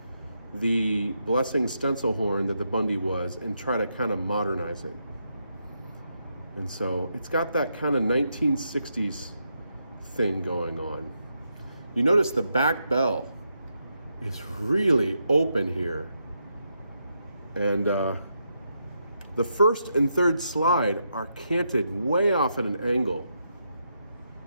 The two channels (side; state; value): both; inverted; correlation -0.82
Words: the Blessing stencil horn that the Bundy was and try to kind of modernize it. And so it's got that kind of 1960s thing going on. You notice the back bell is really open here. And the first and third slide are canted way off at an angle.